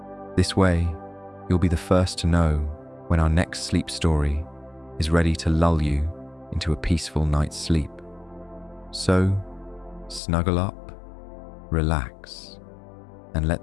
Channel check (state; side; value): drops out; right; at 10.2 s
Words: This way, you'll be the first to know when our next sleep story is ready to lull you into a peaceful night's sleep. So, snuggle up, relax, and